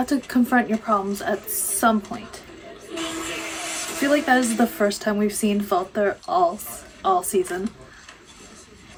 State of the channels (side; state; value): both; identical; correlation 1.00